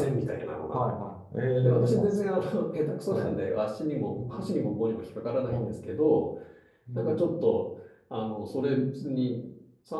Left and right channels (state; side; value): identical; both; correlation 1.00